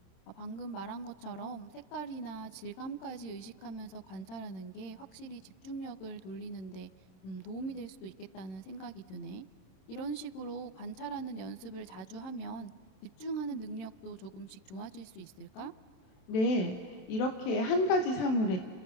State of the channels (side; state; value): right; late; 26 ms